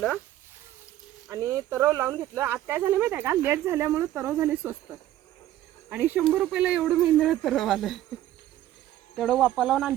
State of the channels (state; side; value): quieter; left; 13.3 dB